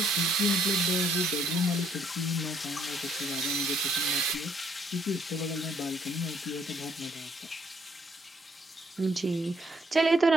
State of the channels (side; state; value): both; normal; correlation 0.68